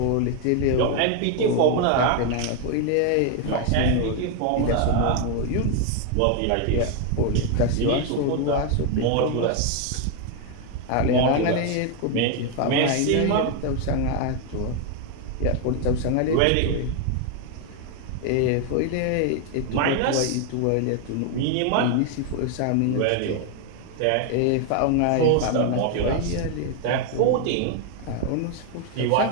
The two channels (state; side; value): different; both; correlation 0.01